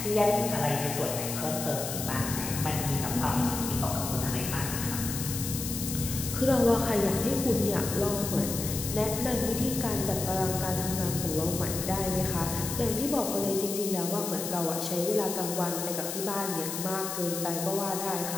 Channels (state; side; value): noise; left; hiss, 5 dB below the sound